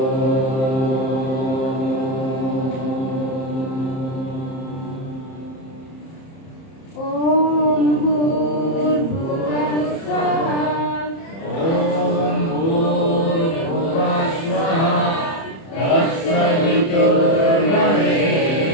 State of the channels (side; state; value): right; late; 30 ms